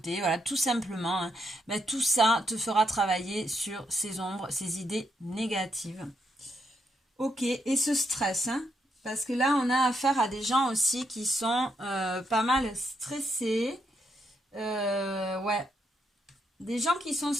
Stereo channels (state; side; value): normal; both; correlation 0.79